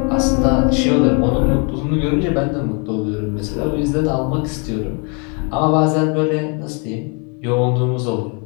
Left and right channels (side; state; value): right; quieter; 35.6 dB